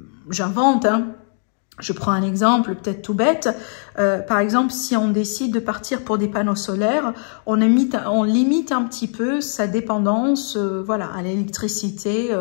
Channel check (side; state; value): right; silent; 57 dB below the other